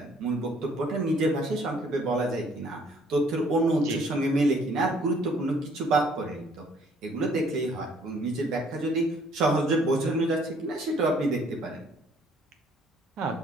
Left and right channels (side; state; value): both; normal; correlation 0.61